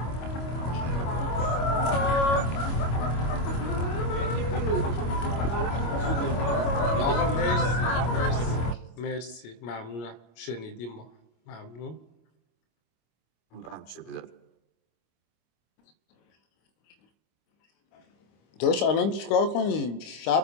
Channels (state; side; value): late; right; 25 ms